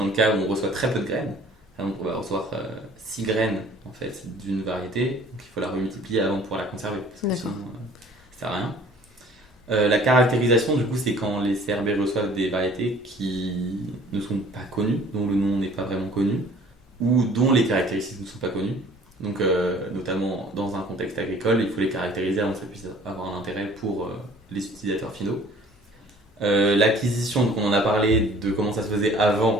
le cas où on reçoit très peu de graines. Donc on va recevoir 6 graines en fait d'une variété, donc il faut la remultiplier avant de pouvoir la conserver, parce que sinon ça sert à rien. La caractérisation, du coup, c'est quand les CRB reçoivent des variétés qui ne sont pas connues, dont le nom n'est pas vraiment connu, ou dont les caractéristiques ne sont pas connues. Donc, notamment dans un contexte agricole, il faut les caractériser avant que ça puisse avoir un intérêt pour les utilisateurs finaux. L'acquisition, donc on en a parlé de comment ça se faisait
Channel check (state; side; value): normal; both; correlation 0.52